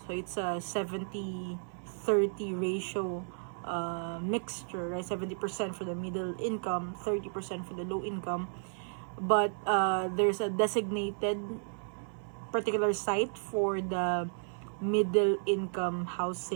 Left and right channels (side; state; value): left; silent; 56 dB below the other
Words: So it's a 70-30 ratio mixture, right? 70% for the middle income, 30% for the low income. But there's a designated particular site for the middle income